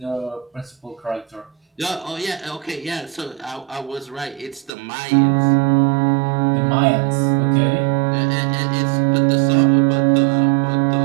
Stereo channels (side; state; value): left; drops out; at 4.7 s